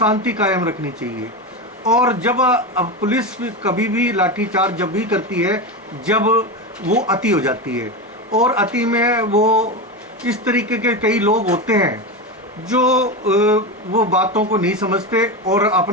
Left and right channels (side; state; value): both; normal; correlation 0.18